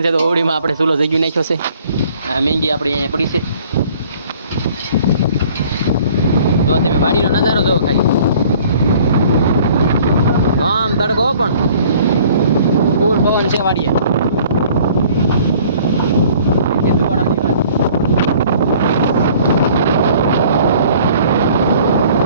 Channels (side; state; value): both; inverted; correlation -0.54